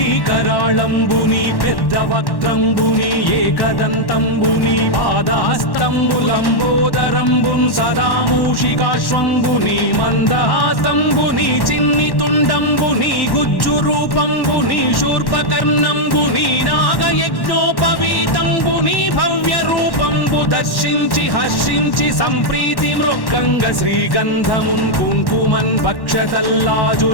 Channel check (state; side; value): late; right; 1.1 ms